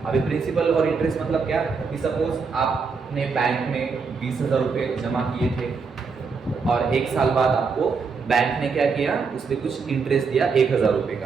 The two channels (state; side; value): quieter; left; 5.1 dB